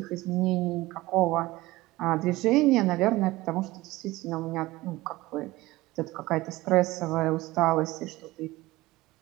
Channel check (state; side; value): quieter; left; 19.1 dB